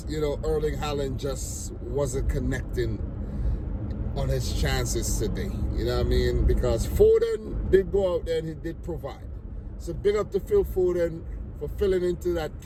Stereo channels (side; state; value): both; identical; correlation 1.00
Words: you know, Erling Haaland just wasn't connecting on his chances today. You know what I mean? Because Foden did go out there and he did provide. So big up to Phil Foden for filling into that